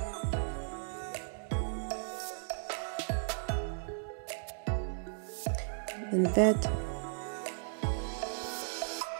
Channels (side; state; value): left; silent; digital silence